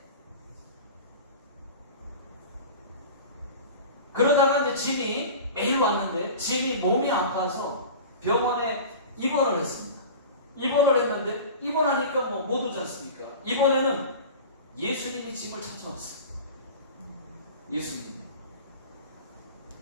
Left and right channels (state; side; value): inverted; both; correlation -0.35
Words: 그러다가 이제 짐이 매일 왔는데 짐이 몸이 아파서 병원에 입원을 했습니다. 입원을 했는데 입원하니까 뭐 못 오지 않습니까? 이번에는 예수님이 짐을 찾아왔어요.